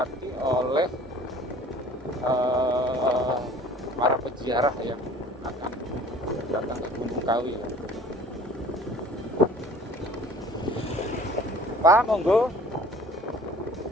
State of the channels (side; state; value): both; normal; correlation 0.49